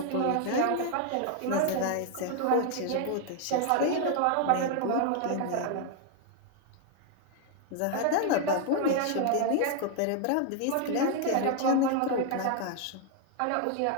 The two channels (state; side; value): different; both; correlation 0.00